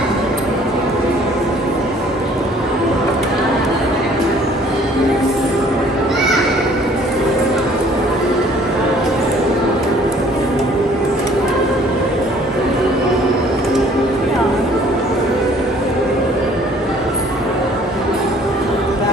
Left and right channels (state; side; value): normal; both; correlation 0.56